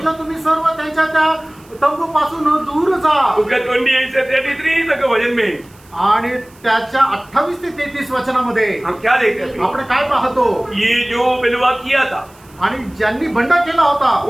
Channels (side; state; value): right; noise; hiss, 28 dB below the sound